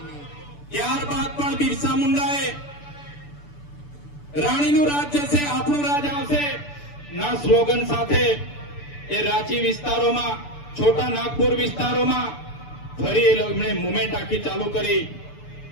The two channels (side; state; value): right; late; 6.9 ms